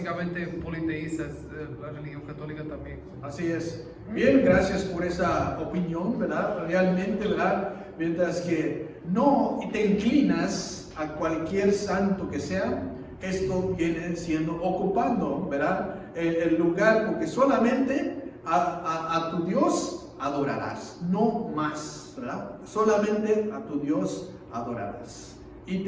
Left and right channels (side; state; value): both; identical; correlation 1.00